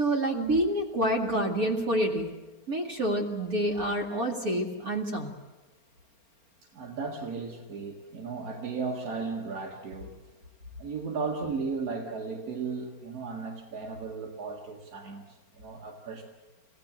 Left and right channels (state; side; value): late; left; 4.4 ms